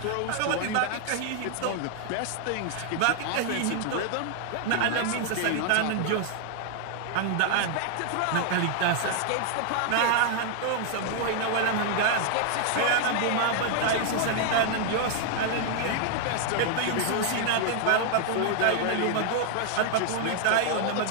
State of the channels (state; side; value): different; both; correlation 0.00